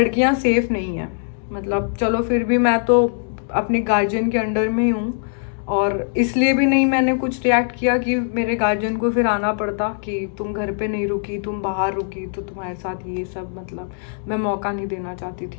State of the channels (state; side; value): silent; right; digital silence